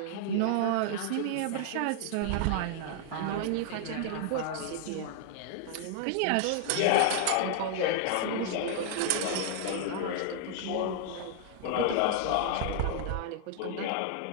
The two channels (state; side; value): different; both; correlation 0.00